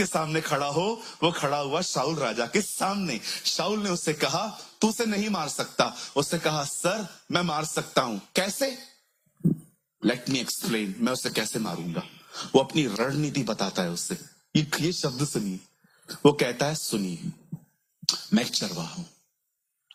सामने खड़ा हो, वो खड़ा हुआ शाऊल राजा के सामने। शाऊल ने उससे कहा, तू उसे नहीं मार सकता। उसने कहा, सर मैं मार सकता हूं। कैसे? लेट मी एक्सप्लेन, मैं उसे कैसे मारूंगा। वो अपनी रणनीति बताता है उससे। ये शब्द सुनिए, वो कहता है, सुनिए, मैं एक चरवाहा हूं,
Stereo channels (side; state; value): both; identical; correlation 1.00